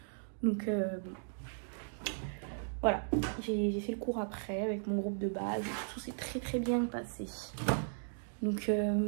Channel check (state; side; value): silent; left; digital silence